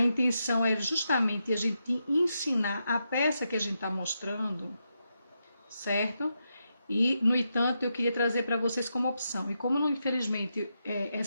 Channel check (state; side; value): inverted; both; correlation -0.85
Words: é justamente a gente ensinar a peça que a gente está mostrando, certo? E, no entanto, eu queria trazer para vocês como opção. E como, infelizmente,